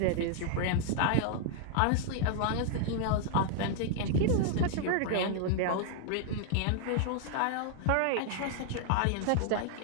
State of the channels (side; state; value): both; different; correlation 0.00